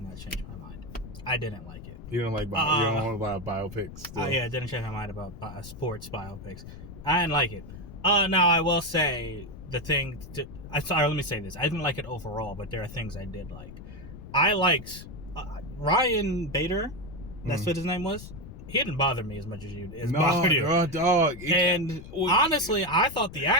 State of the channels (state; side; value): noise; left; rumble, 13 dB below the sound